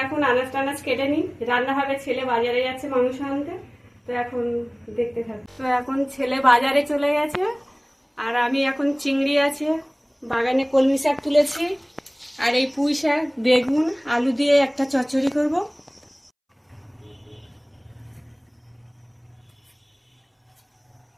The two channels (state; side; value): identical; both; correlation 1.00